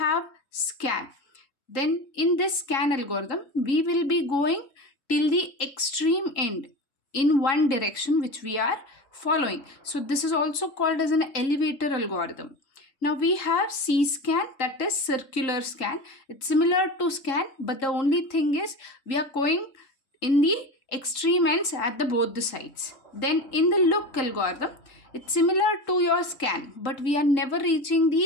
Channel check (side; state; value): right; late; 3.8 ms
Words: SCAN. Then in this SCAN algorithm, we will be going till the extreme end in one direction which we are following. So this is also called as an elevator algorithm. Now we have CSCAN, that is circular scan. It's similar to SCAN, but the only thing is we are going in the extreme ends at the both the sides. Then in the LOOK algorithm, it's similar to your SCAN, but we are never reaching